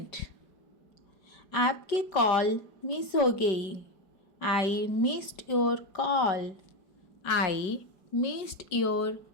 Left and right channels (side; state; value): right; late; 5.0 ms